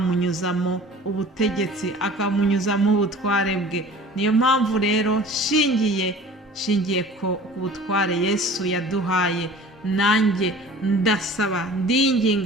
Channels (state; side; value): normal; both; correlation 0.44